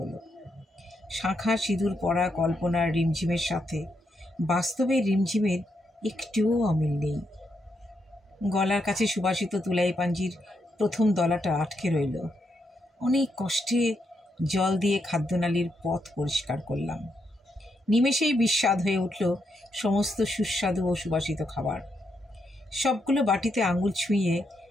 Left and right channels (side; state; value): both; normal; correlation 0.80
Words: শাঁখা সিঁদুর পরা কল্পনার রিমঝিমের সাথে বাস্তবের রিমঝিমের একটুও অমিল নেই। গলার কাছে সুবাসিত তুলাই পাঞ্জির প্রথম দলাটা আটকে রইল। অনেক কষ্টে জল দিয়ে খাদ্যনালীর পথ পরিষ্কার করলাম। নিমেষেই বিস্বাদ হয়ে উঠল সমস্ত সুস্বাদু ও সুবাসিত খাবার। সবগুলো বাটিতে আঙুল ছুঁয়ে